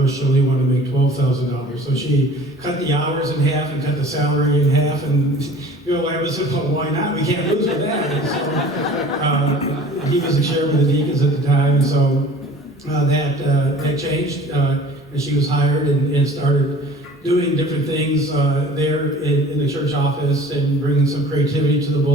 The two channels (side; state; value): both; normal; correlation 0.46